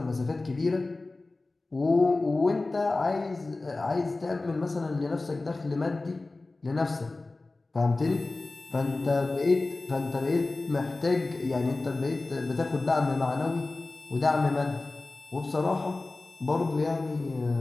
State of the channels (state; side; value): quieter; right; 3.2 dB